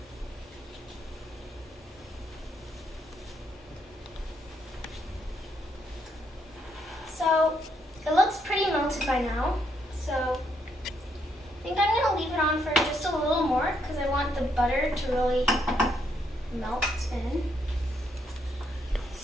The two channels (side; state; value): both; normal; correlation 0.75